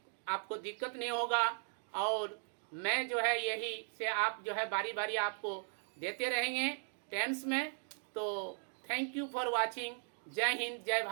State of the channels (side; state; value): left; silent; digital silence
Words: आपको दिक्कत नहीं होगा। और मैं जो है यही से आप जो है बारी बारी आपको देते रहेंगे टेंस में। तो थैंक यू फॉर वाचिंग। जय हिंद, जय